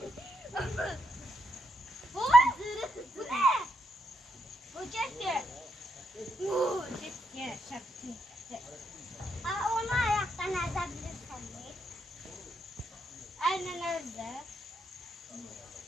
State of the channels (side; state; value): both; normal; correlation 0.78